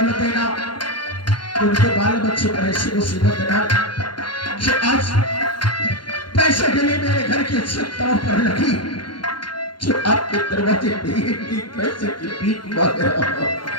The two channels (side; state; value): right; late; 0.71 ms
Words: देना, उनके बाल बच्चे पर ऐसी मुसीबत देना कि आज पैसे के लिए मेरे घर की छतों पर लगी, जो आपके दरवाजे पे ही पैसे की भीख मांग रहा हूं।